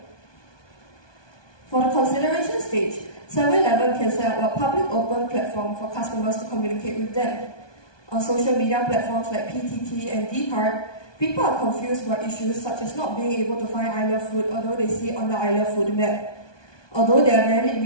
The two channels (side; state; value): right; late; 1.2 ms